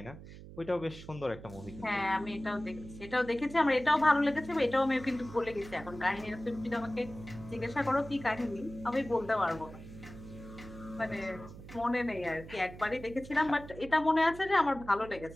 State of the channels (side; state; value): right; noise; hum, 15 dB below the sound